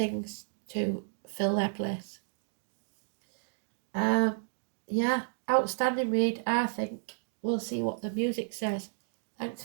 to fill their place. Yeah, outstanding read, I think. We'll see what the music says. Thanks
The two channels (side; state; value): left; silent; digital silence